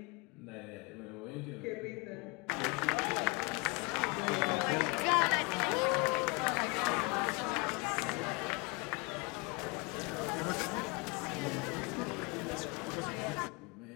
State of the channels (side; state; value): right; quieter; 29.2 dB